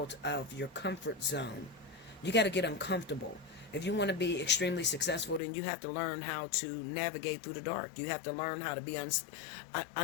of your comfort zone. You got to get uncomfortable. If you want to be extremely successful, then you have to learn how to navigate through the dark. You have to learn how to be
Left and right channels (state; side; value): drops out; right; at 5.4 s